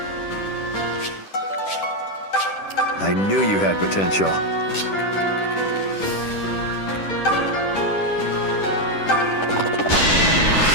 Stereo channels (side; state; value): right; late; 10 ms